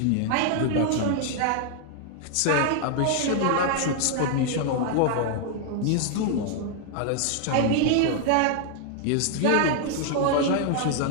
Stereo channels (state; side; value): different; both; correlation 0.00